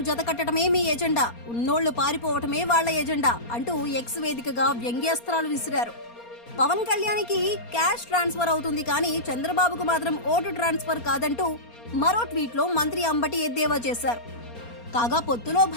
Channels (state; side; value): late; right; 4.3 ms